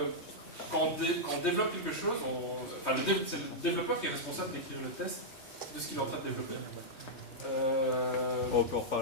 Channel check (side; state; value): right; late; 3.2 ms